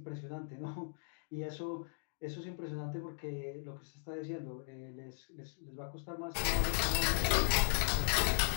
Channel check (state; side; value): silent; right; digital silence